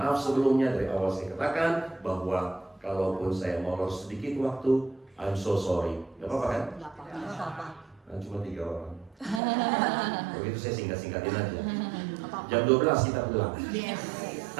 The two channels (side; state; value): left; drops out; at 9.4 s